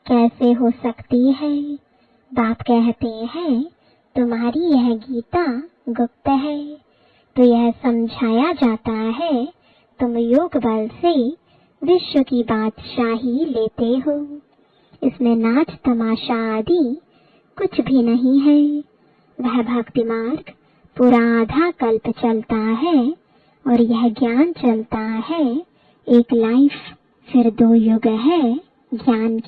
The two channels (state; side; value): identical; both; correlation 1.00